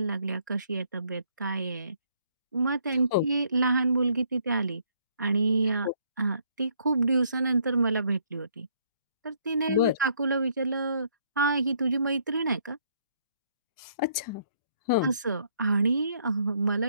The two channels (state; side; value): inverted; both; correlation -0.68